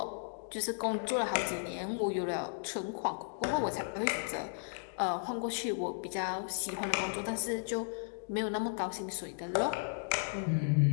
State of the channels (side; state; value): right; silent; digital silence